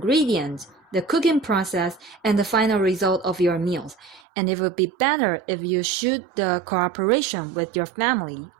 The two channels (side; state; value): left; drops out; at 4.2 s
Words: the cooking process, and the final result of your meals. And it would be better if you shoot the cooperation with your family